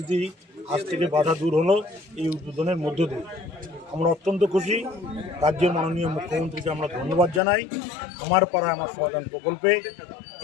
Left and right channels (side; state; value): right; drops out; at 7.4 s